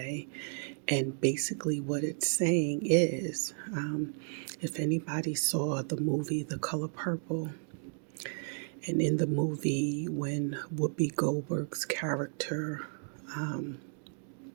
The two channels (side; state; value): left; silent; 56 dB below the other